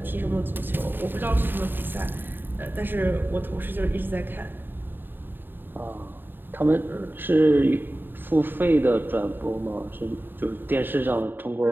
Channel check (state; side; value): late; left; 0.095 ms